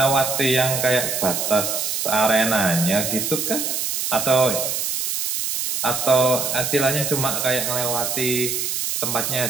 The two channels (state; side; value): noise; right; hiss, 1 dB below the sound